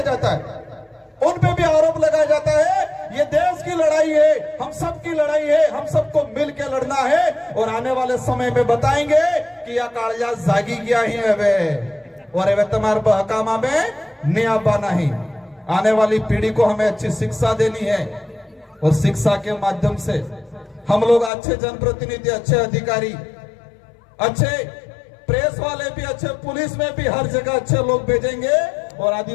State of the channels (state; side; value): drops out; right; at 21.3 s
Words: जाता है, उन पे भी आरोप लगाया जाता है। ये देश की लड़ाई है, हम सब की लड़ाई है, हम सबको मिल के लड़ना है और आने वाले समय में बताएंगे कि यह कालिया जागी गया ही है वे, और वे तुम्हारे बहकामा में नियाबा नहीं। आने वाली पीढ़ी को हमें अच्छी शिक्षा देनी है और शिक्षा के माध्यम से हम लोग अच्छे जनप्रतिनिधि, अच्छे अधिकारी, अच्छे प्रेस वाले भी, अच्छे पुलिस में भी हर जगह अच्छे लोग भेजेंगे और